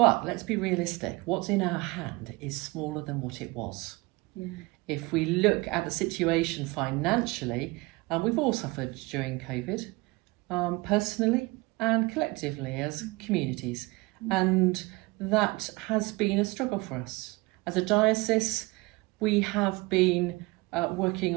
let's be realistic. What's in our hand is smaller than what it was. If we look at the situation financially, we've all suffered during COVID, personally and collectively as communities. And that has been a struggle for us. As a diocese, we have been working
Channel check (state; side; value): quieter; left; 23.6 dB